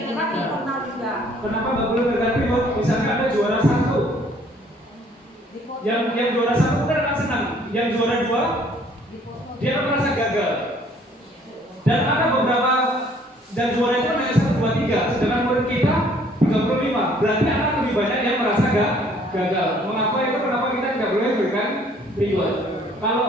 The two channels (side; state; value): both; normal; correlation 0.59